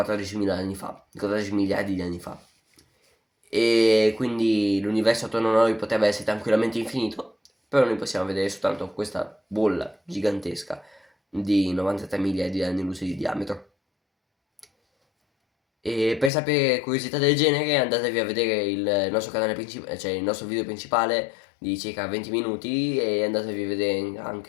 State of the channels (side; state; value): right; drops out; at 16.3 s